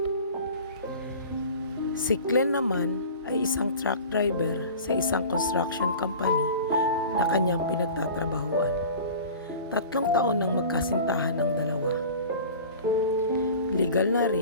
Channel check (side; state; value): both; inverted; correlation -0.40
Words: Si Glenn naman ay isang truck driver sa isang construction company na kanyang pinagtatrabahuan. 3 taon nang magkasintahan ng dalawa. Legal na